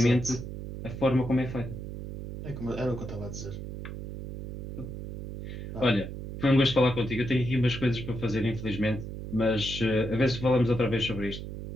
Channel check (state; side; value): noise; right; hum, 8 dB below the sound